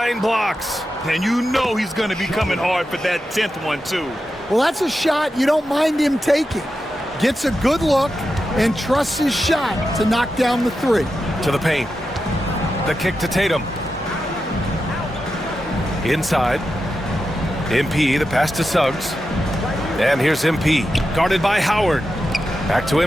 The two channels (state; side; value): normal; both; correlation 0.89